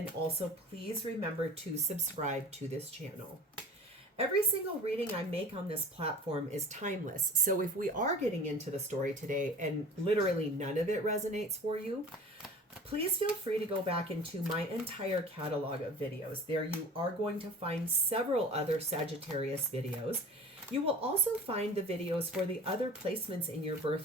also please remember to subscribe to this channel. Every single reading I make on this platform is timeless. So if we are getting into the story today and literally none of it resonates for you, please feel free to go back into my entire catalog of videos. There you are going to find several other Sagittarius videos. You will also find the videos for the other placements in your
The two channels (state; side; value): normal; both; correlation 0.41